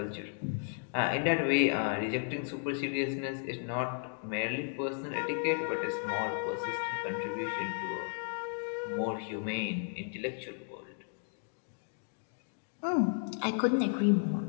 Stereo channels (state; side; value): silent; right; 55 dB below the other